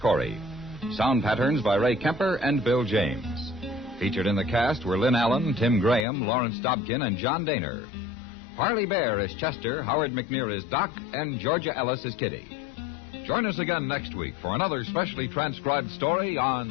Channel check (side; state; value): right; drops out; at 6.1 s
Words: Sound patterns by Ray Kemper and Bill James. Featured in the cast were Lynn Allen, Tim Graham, Lawrence Dobkin, and John Daner. Parley Bear is Chester, Howard McNear is Doc, and Georgia Ellis is Kitty. Join us again next week for another specially transcribed story